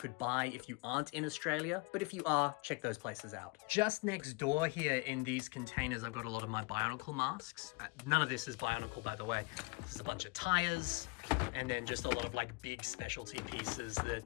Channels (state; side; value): quieter; right; 27.8 dB